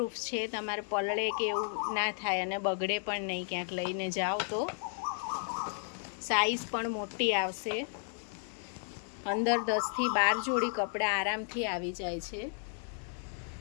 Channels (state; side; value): silent; right; 55 dB below the other